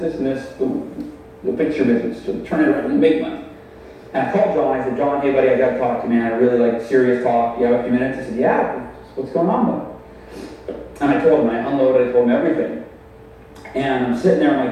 and this, boom. You'll fix your business. You'll turn it around and make money. And I called John. I said, John, hey buddy, I got to talk to you, man. I really like serious talk. You have a few minutes? He said, yeah. What's going on, bud? And I told him, I unloaded, I told him everything. And I'm sitting there,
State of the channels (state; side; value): identical; both; correlation 1.00